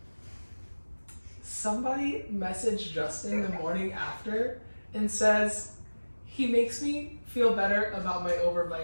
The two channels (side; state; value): both; inverted; correlation -1.00